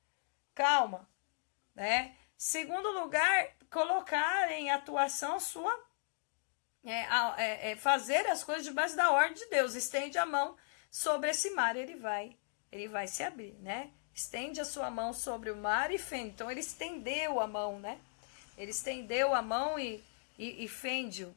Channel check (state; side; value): silent; right; digital silence